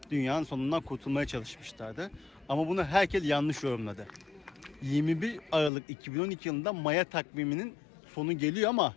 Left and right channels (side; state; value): right; drops out; at 5.7 s